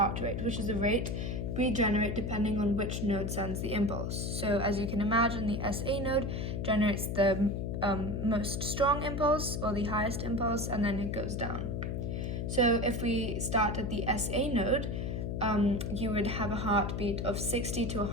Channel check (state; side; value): noise; left; hum, 2 dB below the sound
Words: rate, which is the rate we generate depending on which node sends the impulse. So as you can imagine, the SA node generates the most strong impulse, or the highest impulse, and then it goes down. So if we start at the SA node, you would have a heartbeat of 60 to